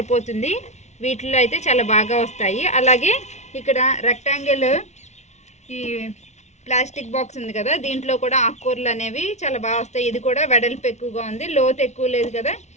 వీటిలో అయితే చాలా బాగా వస్తాయి. అలాగే ఇక్కడ రెక్టాంగిల్ ఈ ప్లాస్టిక్ బాక్స్ ఉంది కదా, దీంట్లో కూడా ఆకుకూరలు అనేవి చాలా బాగా వస్తాయి. ఇది కూడా వెడల్పు ఎక్కువగా ఉంది, లోతు ఎక్కువ లేదు కదా.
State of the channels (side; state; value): right; late; 0.33 ms